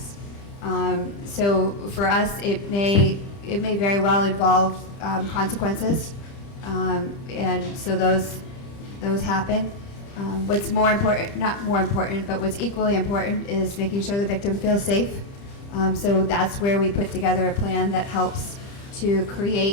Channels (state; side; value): late; right; 30 ms